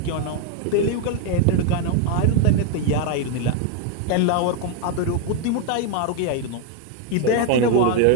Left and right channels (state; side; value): different; both; correlation 0.01